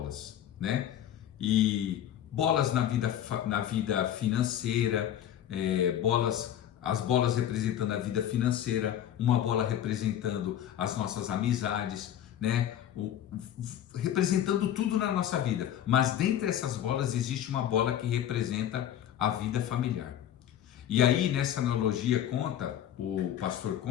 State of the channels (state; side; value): quieter; right; 10.8 dB